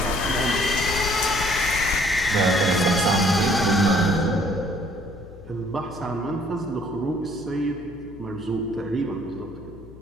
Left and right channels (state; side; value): noise; left; hum, 19 dB below the sound